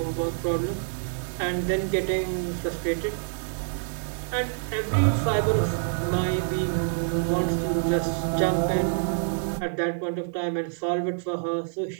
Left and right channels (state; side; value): silent; left; 60 dB below the other